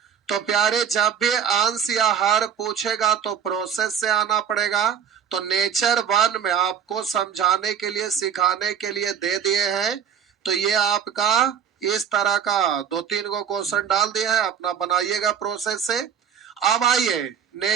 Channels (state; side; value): quieter; left; 8.1 dB